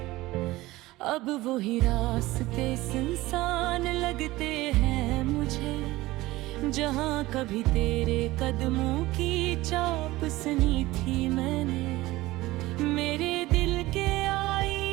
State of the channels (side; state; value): left; quieter; 18.6 dB